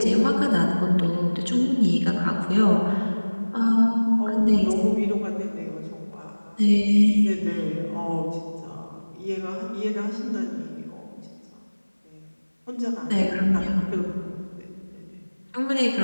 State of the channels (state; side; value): inverted; both; correlation -1.00